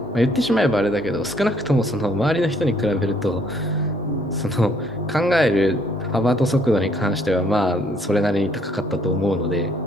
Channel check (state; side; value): normal; both; correlation 0.65